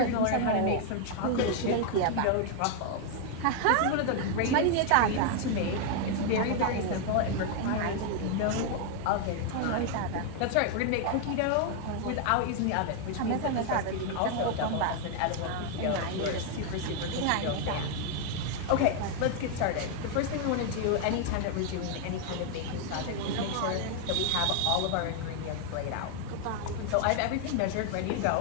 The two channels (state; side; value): different; both; correlation 0.00